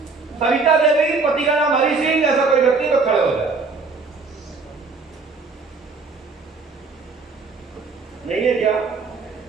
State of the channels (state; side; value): quieter; left; 4.3 dB